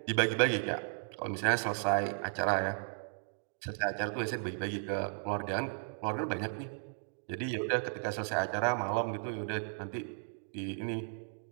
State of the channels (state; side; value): silent; left; digital silence